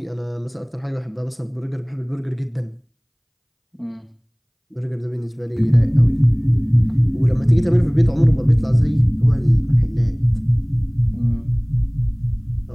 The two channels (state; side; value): identical; both; correlation 1.00